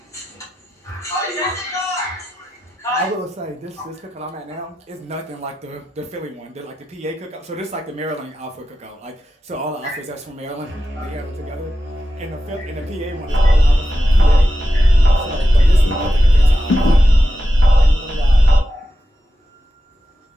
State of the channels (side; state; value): both; normal; correlation 0.91